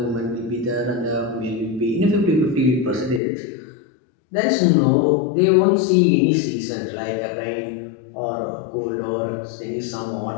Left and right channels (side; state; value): right; drops out; at 3.2 s